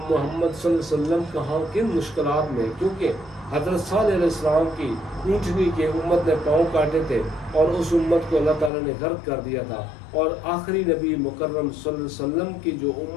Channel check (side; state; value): right; drops out; at 8.7 s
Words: صلی اللہ علیہ وسلم کہاں کن مشکلات میں، کیونکہ حضرت صالح علیہ السلام کی اونٹنی کے امت نے پاؤں کاٹے تھے، اور اس امت کو اللہ تعالیٰ نے غرق کر دیا تھا۔ اور آخری نبی مکرم صلی اللہ علیہ وسلم کی جو